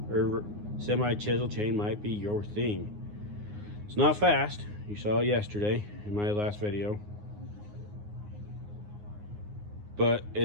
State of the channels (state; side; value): late; left; 9.6 ms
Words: or semi chisel chain might be your thing. It's not fast. You saw it yesterday in my last video, but